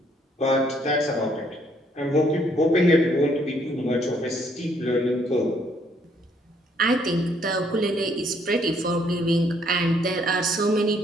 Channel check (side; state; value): both; normal; correlation 0.67